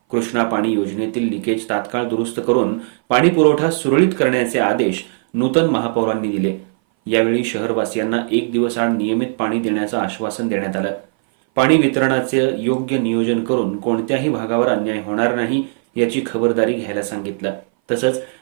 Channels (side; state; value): left; silent; 60 dB below the other